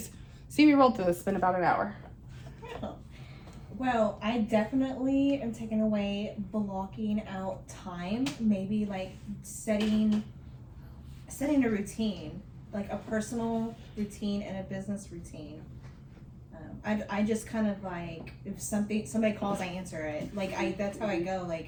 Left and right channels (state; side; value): identical; both; correlation 1.00